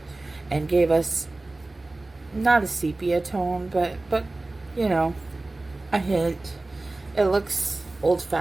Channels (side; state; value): left; quieter; 3.0 dB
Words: and gave us not a sepia tone, but you know, a hint. It looks